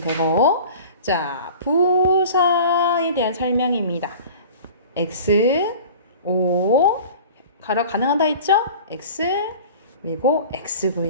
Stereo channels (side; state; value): both; inverted; correlation -0.41